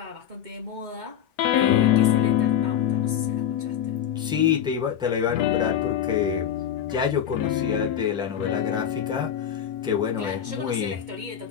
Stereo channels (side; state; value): right; quieter; 9.5 dB